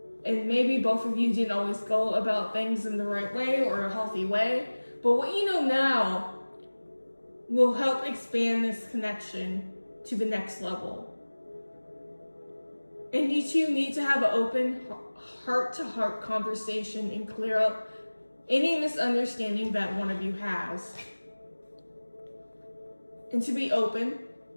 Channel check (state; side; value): inverted; both; correlation -1.00